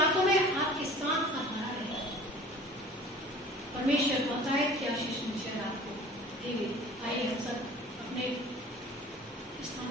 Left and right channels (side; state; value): both; normal; correlation 0.45